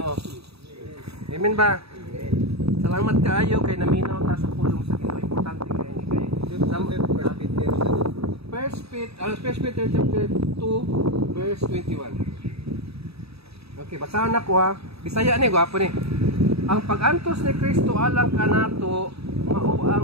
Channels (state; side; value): late; left; 0.78 ms